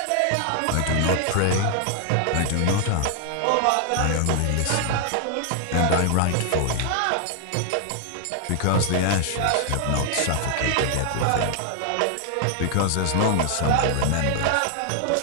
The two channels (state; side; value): different; both; correlation 0.00